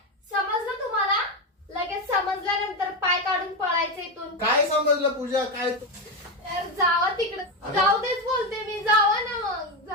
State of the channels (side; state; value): both; normal; correlation 0.11